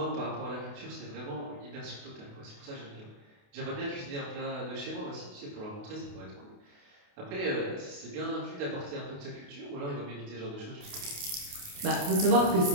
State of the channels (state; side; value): late; left; 28 ms